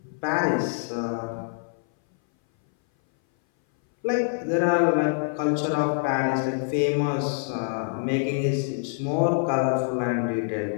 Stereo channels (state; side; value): silent; right; 59 dB below the other